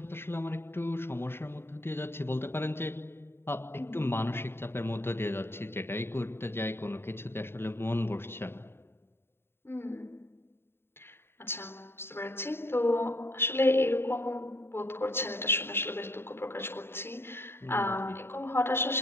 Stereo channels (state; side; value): late; right; 0.11 ms